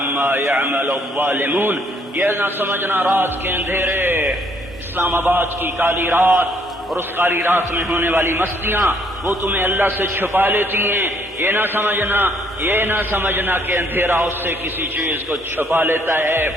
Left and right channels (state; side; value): normal; both; correlation 0.66